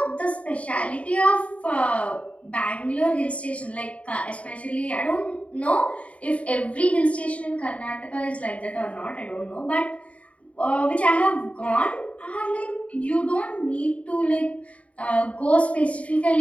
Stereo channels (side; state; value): right; late; 0.065 ms